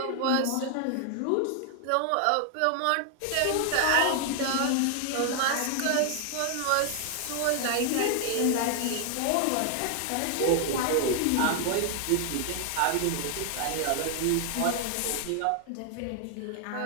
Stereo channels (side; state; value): both; different; correlation 0.00